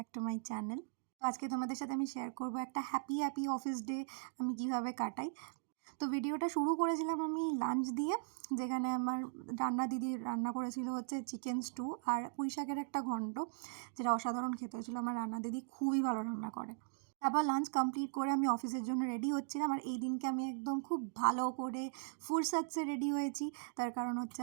to my channel. তো আজকে তোমাদের সাথে আমি শেয়ার করব একটা হ্যাপি অফিস ডে আমি কিভাবে কাটাই। তো ভিডিওটা শুরু করেছিলাম আমি লাঞ্চ দিয়ে, যেখানে আমার দিদি রান্না করেছিল হচ্ছে চিকেন স্টু আর পুঁই শাকের একটা ঘন্ট, যেটা অসাধারণ খেতে হয়েছিল। আমার রান্না দিদি খুবই ভালো রান্না করে। তারপর লাঞ্চ কমপ্লিট করে আমি অফিসের জন্য রেডি হচ্ছিলাম, আর এই দিনকে আমি একদম খুব ভালো করে ফুরসাতে রেডি হয়েছি। তার কারণ হচ্ছে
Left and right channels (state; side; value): silent; left; digital silence